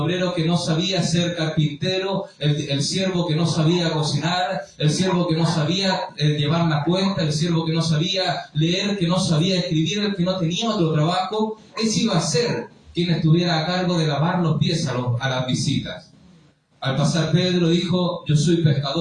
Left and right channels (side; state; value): both; identical; correlation 1.00